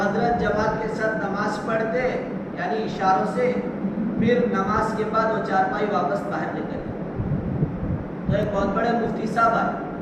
جماعت کے ساتھ نماز پڑھتے، یعنی اشاروں سے، پھر نماز کے بعد وہ چارپائی واپس باہر لے کر. تو ایک بہت بڑے مفتی صاحب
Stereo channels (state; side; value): identical; both; correlation 1.00